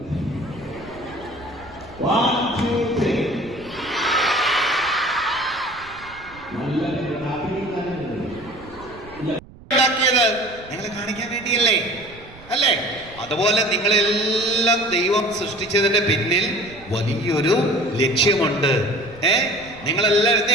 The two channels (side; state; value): right; noise; rumble, 21 dB below the sound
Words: നിങ്ങളെ കാണിക്കാൻ വേണ്ടിയല്ലേ അല്ലേ? അതുപോലെ നിങ്ങളെല്ലാം ദൈവം സൃഷ്ടിച്ചതിന്റെ പിന്നിൽ വലിയൊരു ലക്ഷ്യമുണ്ട്. നിങ്ങളെല്ലാം എന്ത്